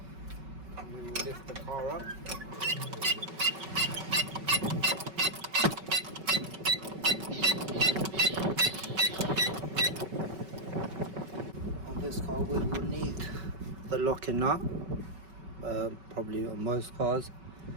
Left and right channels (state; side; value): late; left; 5.3 ms